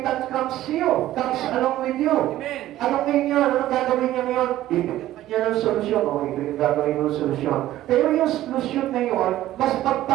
comes along with you. Amen. Anong ngayon? Anong gagawin niya ngayon? Ibigyan ka niya ng solusyon. O, ito yung gagawin mo ng solusyon. Pero yung solusyon na yun, mas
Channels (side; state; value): left; quieter; 14.3 dB